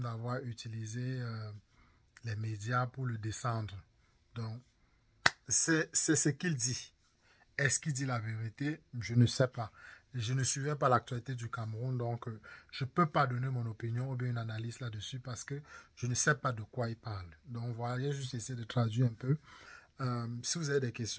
d'avoir utilisé les médias pour le descendre. Donc, c'est ce qu'il dit. Est-ce qu'il dit la vérité? Je ne sais pas. Je ne suivais pas l'actualité du Cameroun, donc je ne peux pas donner mon opinion ou bien une analyse là-dessus parce que je ne sais pas de quoi il parle. Donc voilà, j'ai juste essayé de traduire un peu. Si vous avez des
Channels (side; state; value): both; identical; correlation 1.00